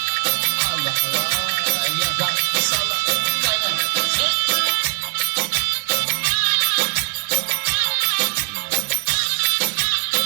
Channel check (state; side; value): silent; left; 65 dB below the other